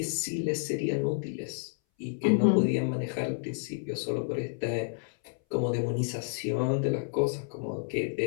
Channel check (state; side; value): silent; right; 58 dB below the other